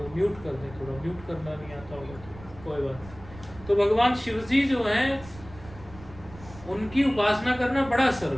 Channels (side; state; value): right; noise; rumble, 18 dB below the sound